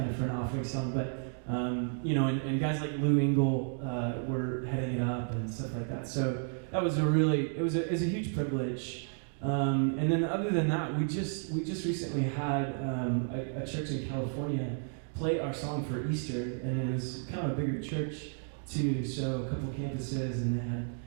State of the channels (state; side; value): silent; left; 56 dB below the other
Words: of for an offering song, but and guys like Lou Engle were heading up and stuff like that. So that was it was a huge privilege. And then other than that, we just recently had a church in California play our song for Easter, and it was kind of a bigger church too. So a couple of campuses, and they had